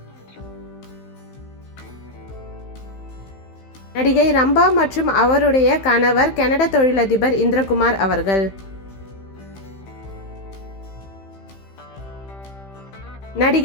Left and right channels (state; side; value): late; right; 15 ms